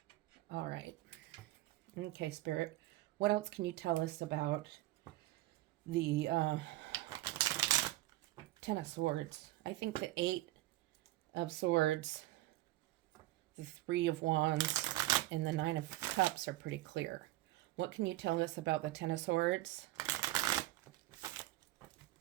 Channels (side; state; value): left; quieter; 17.2 dB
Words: All right. Okay, Spirit. What else can you tell us about the Ten of Swords? I think the Eight of Swords, the Three of Wands, and the Nine of Cups are pretty clear. What can you tell us about the Ten of Swords?